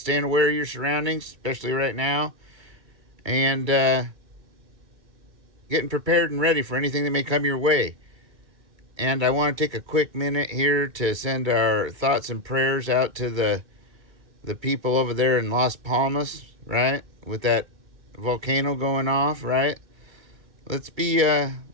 aware of your surroundings, especially right now, and getting prepared and ready for anything that may come your way. And I want to take a quick minute here to send our thoughts and prayers out to the people over there in Las Palmas, right? With that volcano going off, right? Let's be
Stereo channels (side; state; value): left; late; 2.3 ms